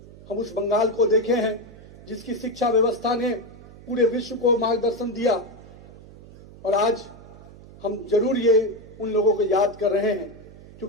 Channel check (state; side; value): noise; right; hum, 19 dB below the sound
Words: हम उस बंगाल को देखे हैं जिसकी शिक्षा व्यवस्था ने पूरे विश्व को मार्गदर्शन दिया। और आज हम जरूर ये उन लोगों को याद कर रहे हैं,